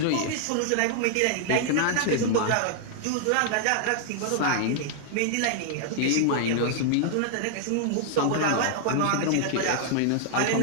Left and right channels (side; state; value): both; different; correlation 0.00